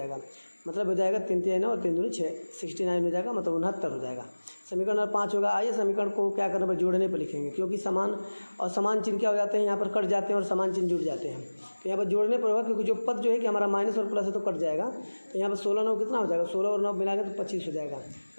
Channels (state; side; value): inverted; both; correlation -1.00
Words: मतलब हो जाएगा 3 3 और 3 दूनी 6 69 हो जाएगा, मतलब 69 हो जाएगा। समीकरण नंबर 5 होगा। आइए समीकरण को क्या करने पर जोड़ने पर लिखेंगे, क्योंकि समान और समान चिन्ह क्या हो जाते हैं, यहाँ पर कट जाते हैं और समान चिन्ह जुड़ जाते हैं। तो यहाँ पर जोड़ने पर होगा, क्योंकि जो पद जो है कि हमारा माइनस और प्लस है तो कट जाएगा। तो यहाँ पर 16 9 कितना हो जाएगा? 16 और 9 मिला के तो 25 हो जाएगा।